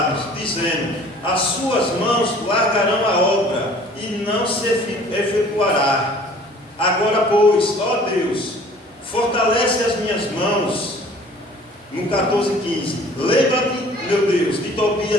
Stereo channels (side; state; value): both; normal; correlation 0.51